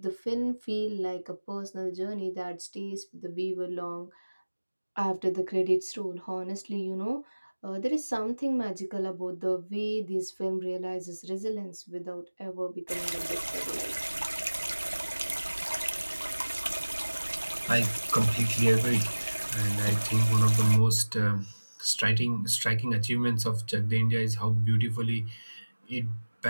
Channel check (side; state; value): both; inverted; correlation -1.00